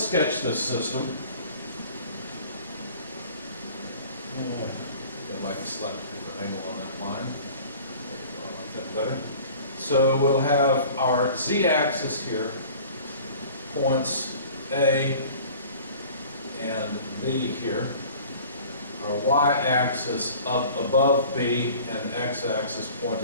this system. I'd like a slightly different angle on that line. I like that better. So we'll have our z-axis here, points A and B here. Our y-axis up above B and x-axis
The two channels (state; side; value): inverted; both; correlation -0.46